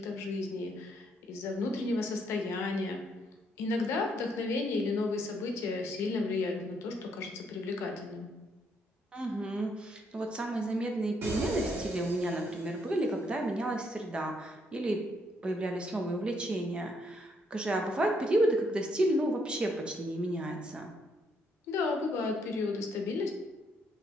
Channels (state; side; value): normal; both; correlation 0.73